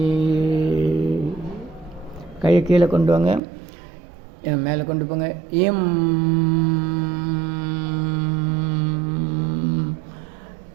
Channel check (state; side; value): drops out; left; at 3.4 s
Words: கையை கீழே கொண்டு வாங்க, மேலே கொண்டு போங்க. இம்